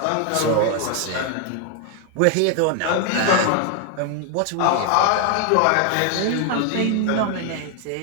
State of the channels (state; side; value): different; both; correlation 0.00